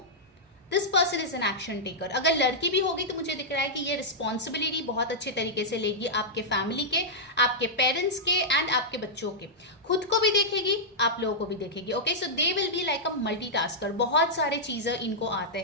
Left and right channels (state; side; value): normal; both; correlation -0.10